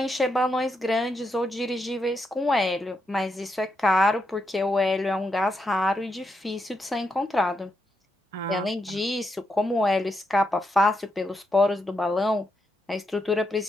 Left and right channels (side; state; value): both; normal; correlation 0.82